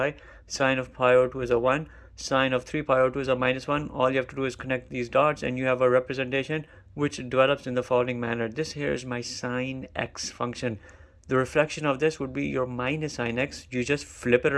Sine of pi over 2 is a 1. Sine of 3 pi over 2 is a minus 1. All you have to do is connect these dots and you have a representation which develops in the following manner. This here is my sine x function. The reflection of this would be your minus sine x. You just flip it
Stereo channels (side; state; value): both; identical; correlation 1.00